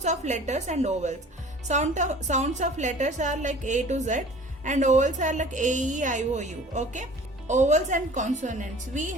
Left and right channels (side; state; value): both; normal; correlation 0.46